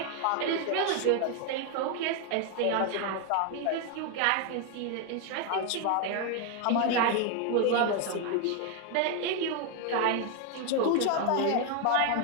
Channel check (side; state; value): both; different; correlation 0.01